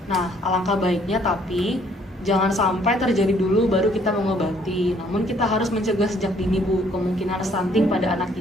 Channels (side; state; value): both; normal; correlation 0.63